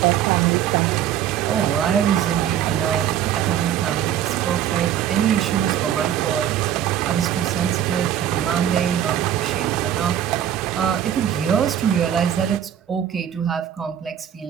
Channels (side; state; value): left; quieter; 10.2 dB